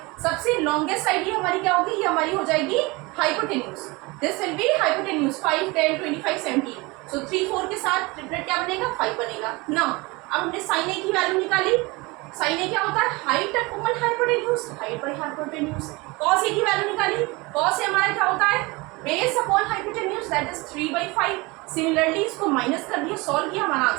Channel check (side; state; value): left; quieter; 24.5 dB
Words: सबसे लॉन्गेस्ट साइड ये हमारी क्या होगी, ये हमारी हो जाएगी hypotenuse. This will be hypotenuse 5 10 25 17। सो 3 4 के साथ ट्रिपलेट क्या बनेगा, 5 बनेगा ना। अब हमने साइन ए की वैल्यू निकाली, साइन ए क्या होता है, height upon hypotenuse, height by hypotenuse. Cos A की वैल्यू निकाली, कॉस ए हमारा क्या होता है, base upon hypotenuse, that is 3/5। Similarly इसको माइनस कर दिया, सॉल्व किया, हमारा